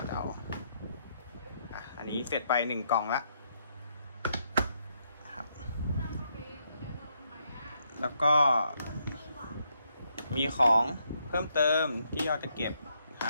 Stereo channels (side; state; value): both; inverted; correlation -0.76